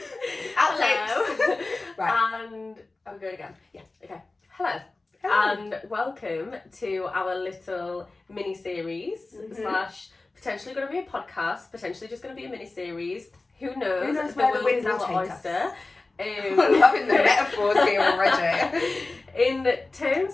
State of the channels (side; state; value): right; quieter; 3.3 dB